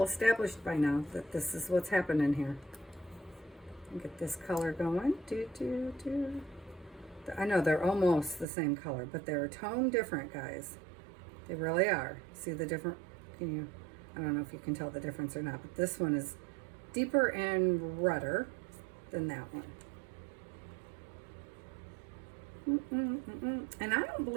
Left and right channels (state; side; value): drops out; left; at 8.5 s